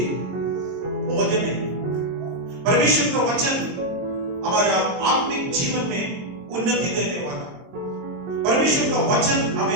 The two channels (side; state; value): left; late; 23 ms